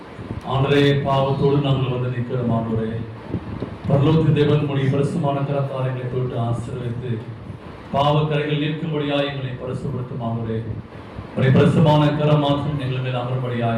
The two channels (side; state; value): both; identical; correlation 1.00